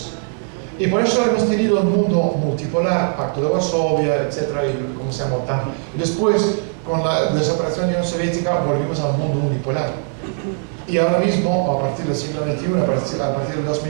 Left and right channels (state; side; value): silent; left; 57 dB below the other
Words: Y por eso hemos tenido un mundo multipolar, Pacto de Varsovia, etcétera, y como se llama OTAN. Y después, con la desaparición de la Unión Soviética, volvimos al mundo unipolar. Y ahora mismo, a partir del siglo XXI, a partir del